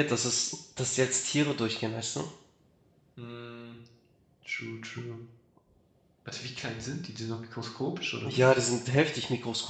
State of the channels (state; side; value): identical; both; correlation 1.00